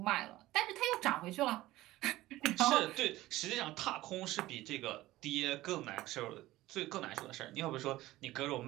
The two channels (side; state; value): left; quieter; 17.0 dB